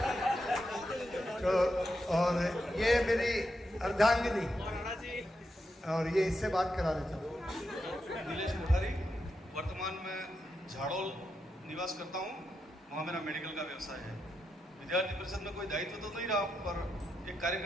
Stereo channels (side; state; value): both; normal; correlation 0.85